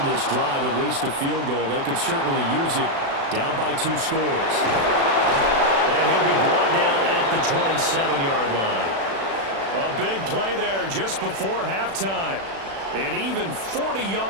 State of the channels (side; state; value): left; late; 36 ms